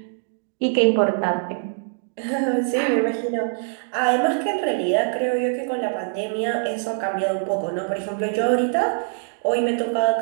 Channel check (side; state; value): left; silent; digital silence